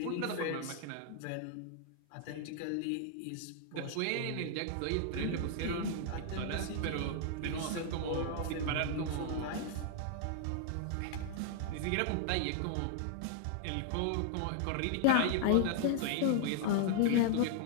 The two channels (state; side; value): different; both; correlation -0.01